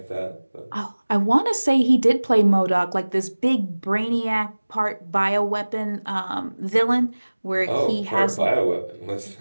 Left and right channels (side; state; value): both; inverted; correlation -1.00